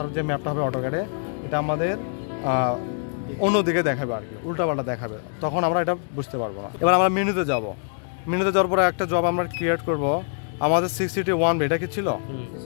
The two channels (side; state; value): right; silent; 62 dB below the other